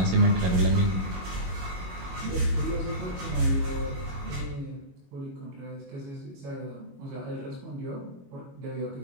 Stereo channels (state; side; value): late; left; 22 ms